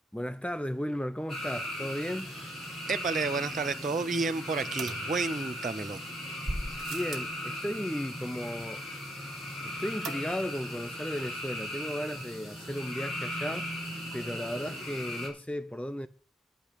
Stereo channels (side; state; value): both; normal; correlation 0.74